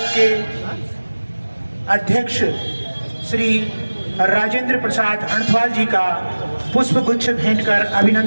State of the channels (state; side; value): inverted; both; correlation -1.00